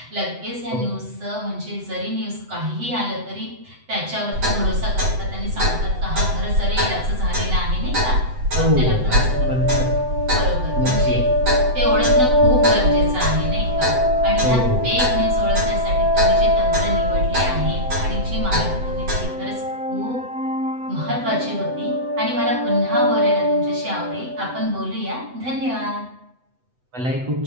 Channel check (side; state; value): left; late; 7.9 ms